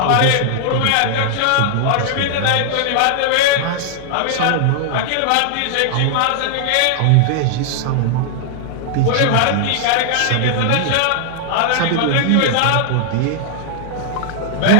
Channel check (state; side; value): different; both; correlation 0.00